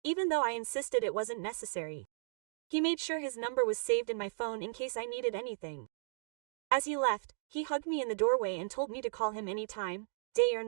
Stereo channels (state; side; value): silent; left; digital silence